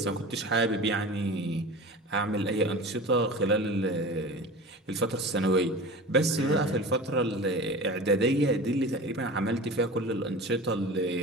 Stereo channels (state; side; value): normal; both; correlation 0.34